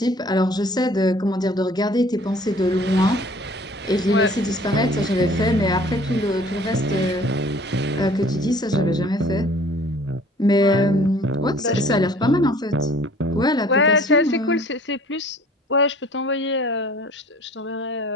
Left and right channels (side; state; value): both; normal; correlation 0.51